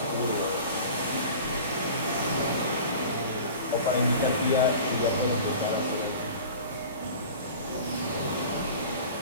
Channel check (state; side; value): inverted; both; correlation -0.39